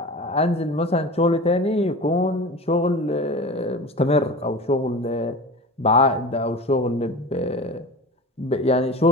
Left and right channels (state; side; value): normal; both; correlation 0.33